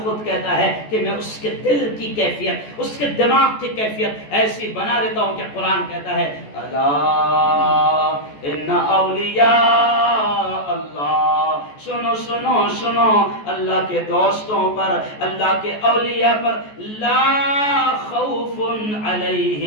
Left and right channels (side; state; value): right; late; 14 ms